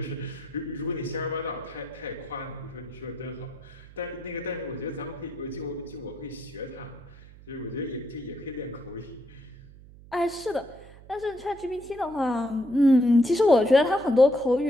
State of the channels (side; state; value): right; noise; hum, 20 dB below the sound